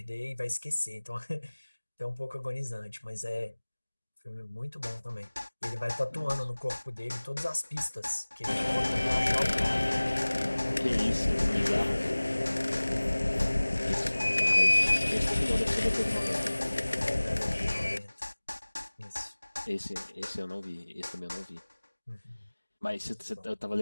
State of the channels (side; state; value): both; inverted; correlation -1.00